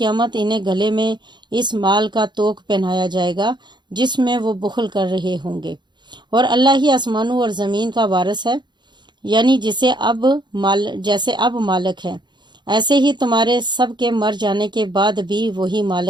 انہیں گلے میں اس مال کا توق پہنایا جائے گا جس میں وہ بخل کر رہے ہوں گے، اور اللہ ہی آسمانوں اور زمین کا وارث ہے، یعنی جیسے اب مالک ہے، ایسے ہی تمہارے سب کے مر جانے کے بعد بھی وہی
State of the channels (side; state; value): left; late; 0.22 ms